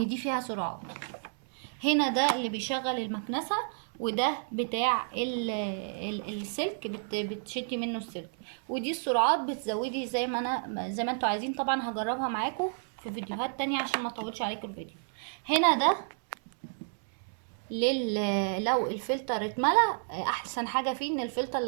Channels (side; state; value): left; silent; 57 dB below the other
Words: دي فيها سرعات. هنا ده اللي بيشغل المكنسة، وده بتاع السلك بتشدي منه السلك. ودي السرعات بتزودي زي ما انتوا عايزين. طبعا هجربها معاكم في فيديوهات تانية عشان ما اطولش عليكم الفيديو. هنا ده لو الفلتر اتملى، احسن حاجه فيه ان الفلتر